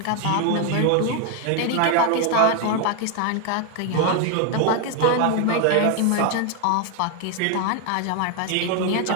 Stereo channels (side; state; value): both; different; correlation 0.01